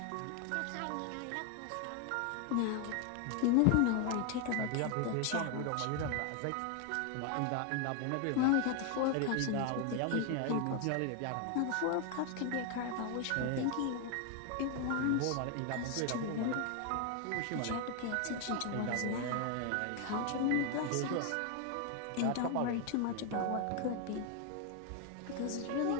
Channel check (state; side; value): different; both; correlation 0.01